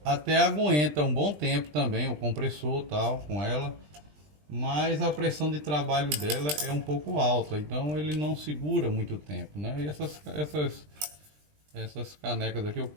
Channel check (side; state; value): left; late; 20 ms